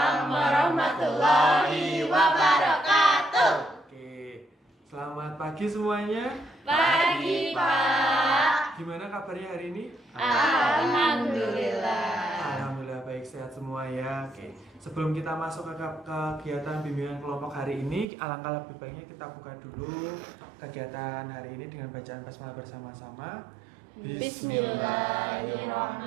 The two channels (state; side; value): drops out; left; at 18.1 s